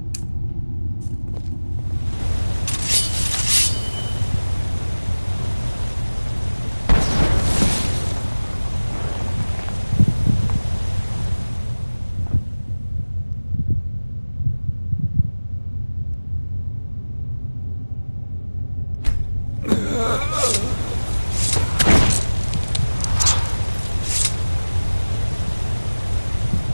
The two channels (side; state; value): both; inverted; correlation -1.00